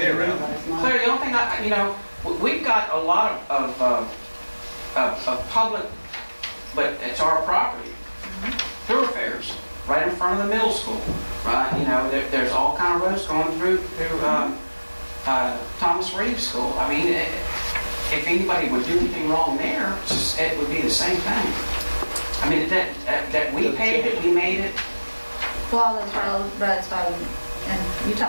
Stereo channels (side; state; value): both; inverted; correlation -1.00